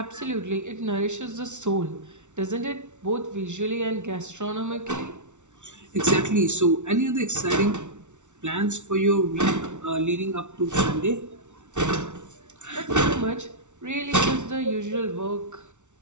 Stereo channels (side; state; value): left; late; 0.84 ms